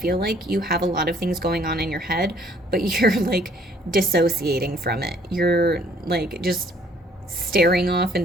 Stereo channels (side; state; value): both; normal; correlation 0.61